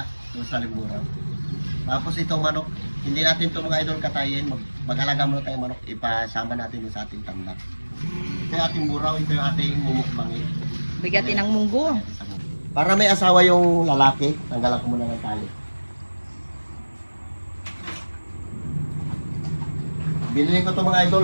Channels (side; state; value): both; inverted; correlation -1.00